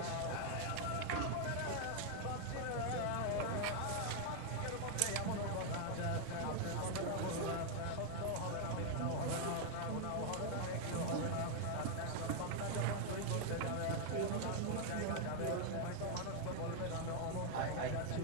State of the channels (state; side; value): different; both; correlation 0.00